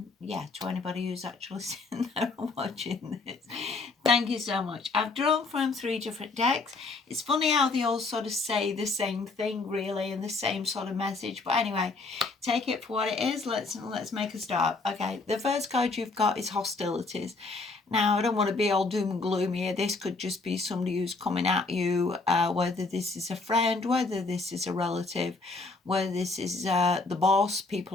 yeah, to anybody who's actually sitting there and watching this. Thank you so much. I've drawn from 3 different decks. It's funny how they all sort of say the same thing, really, and the same sort of message. But anyway, take it for what it is. Let's make a start. Okay, the first card you've got is hostilities. Now, I don't want to be all doom and gloomy here. This could just be somebody who's coming at you, whether this is a friend, whether this is a relative, whether this is the boss,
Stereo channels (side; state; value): right; quieter; 3.8 dB